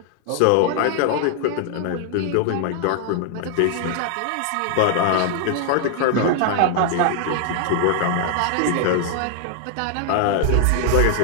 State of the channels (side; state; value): both; different; correlation 0.00